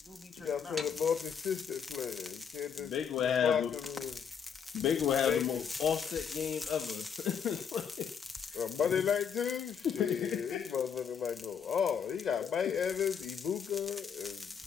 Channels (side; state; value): right; quieter; 7.2 dB